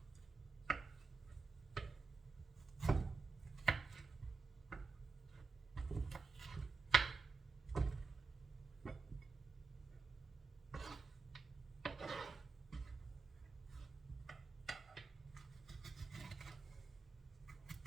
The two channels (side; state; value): left; quieter; 4.4 dB